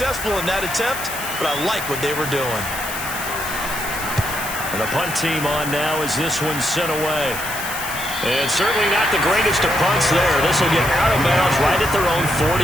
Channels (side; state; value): left; noise; hiss, 8 dB below the sound